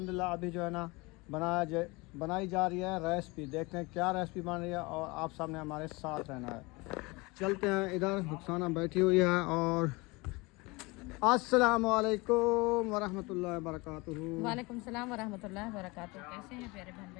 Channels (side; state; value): right; quieter; 25.0 dB